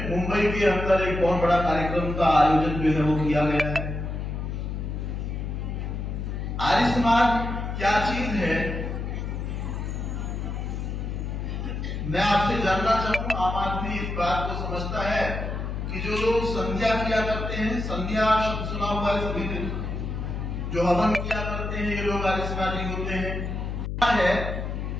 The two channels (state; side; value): noise; left; hum, 4 dB below the sound